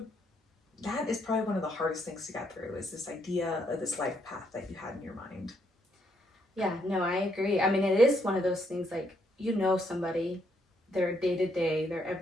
that is probably one of the hardest things to get through, is this idea of this life path that you had in your mind. Yeah, no, I agree. I mean, it is one of those things, like, you know somebody, their day to day, their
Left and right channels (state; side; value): normal; both; correlation 0.74